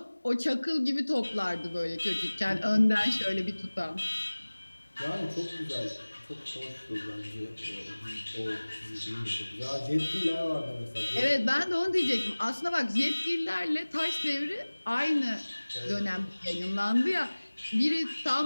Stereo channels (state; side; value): inverted; both; correlation -1.00